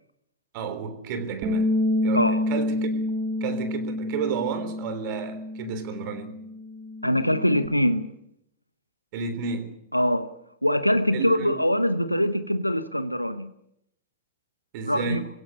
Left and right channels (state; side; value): inverted; both; correlation -0.47